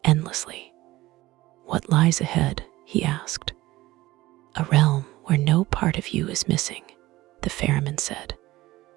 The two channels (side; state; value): left; quieter; 17.8 dB